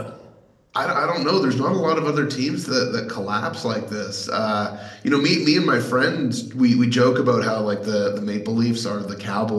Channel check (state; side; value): identical; both; correlation 1.00